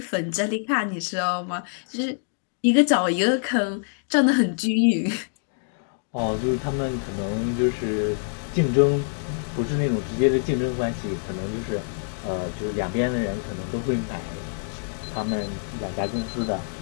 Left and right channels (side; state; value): right; silent; digital silence